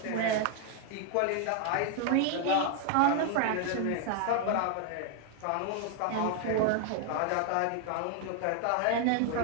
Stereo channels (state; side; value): different; both; correlation 0.01